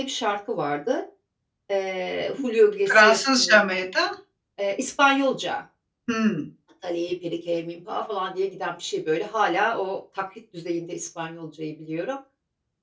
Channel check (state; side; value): identical; both; correlation 1.00